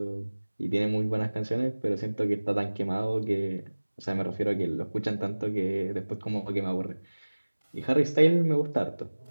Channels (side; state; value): both; inverted; correlation -1.00